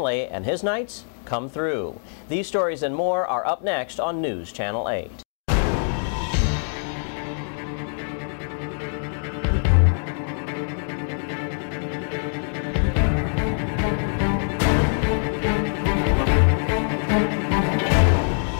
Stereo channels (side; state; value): right; silent; 63 dB below the other